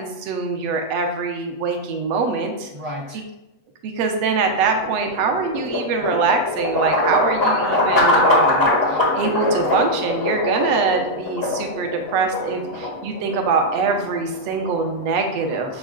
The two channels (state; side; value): late; left; 8.1 ms